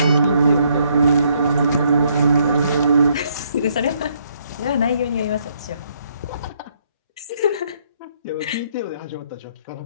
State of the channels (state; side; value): inverted; both; correlation -0.70